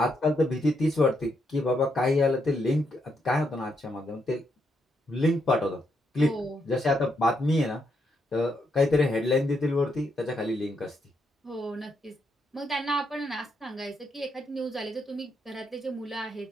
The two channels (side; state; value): both; normal; correlation 0.78